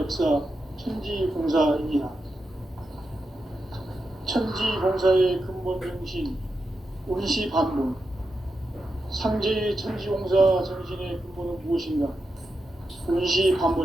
천지공사이니라. 천지공사의 근본 정신 운시반본. 상제의 천지공사 정신의 근본은 무엇인가?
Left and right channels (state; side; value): normal; both; correlation 0.88